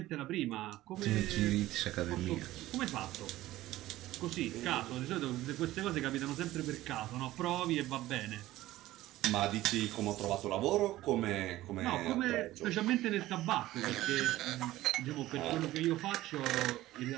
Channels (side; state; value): left; quieter; 16.0 dB